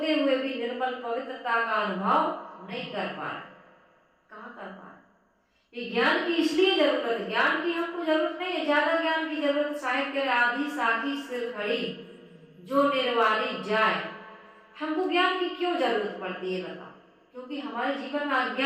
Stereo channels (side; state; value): both; identical; correlation 1.00